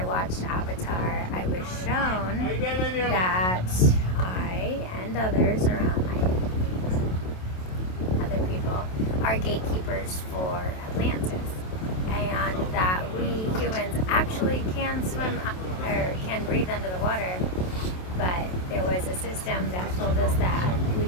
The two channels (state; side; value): late; right; 27 ms